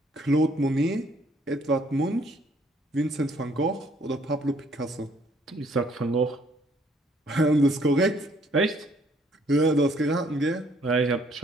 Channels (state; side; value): normal; both; correlation 0.64